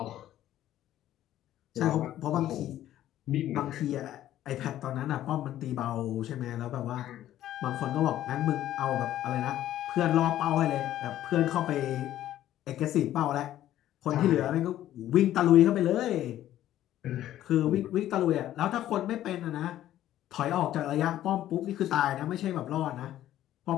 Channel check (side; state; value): right; quieter; 12.8 dB